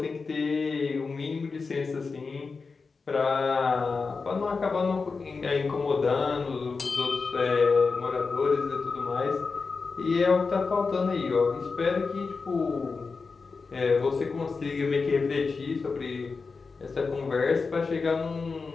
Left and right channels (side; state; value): right; quieter; 4.6 dB